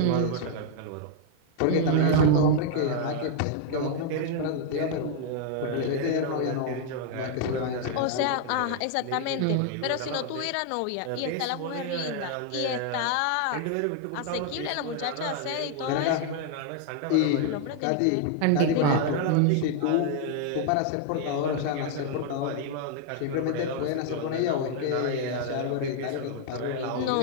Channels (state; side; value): different; both; correlation 0.00